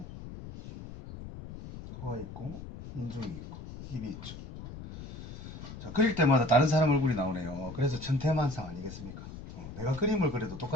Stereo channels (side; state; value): left; noise; rumble, 12 dB below the sound